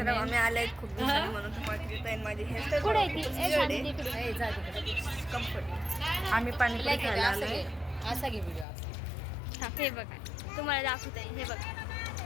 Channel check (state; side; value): drops out; right; at 8.7 s